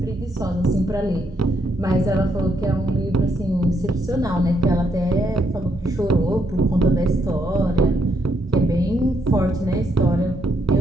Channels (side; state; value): both; normal; correlation 0.75